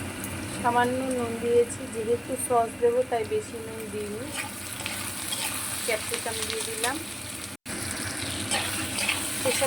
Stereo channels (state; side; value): identical; both; correlation 1.00